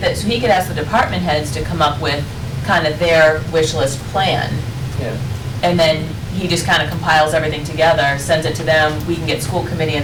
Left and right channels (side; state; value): both; identical; correlation 1.00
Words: So he could ask the department heads to come up with kind of their wish list plan. Yeah. And then he just kind of compiles everything together, sends it to them, we can get school committee,